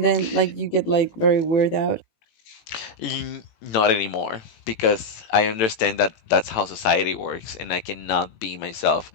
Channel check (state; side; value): late; right; 18 ms